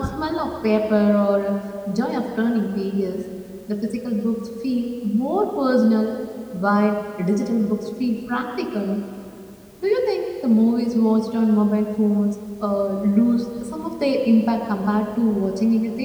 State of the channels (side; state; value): both; identical; correlation 1.00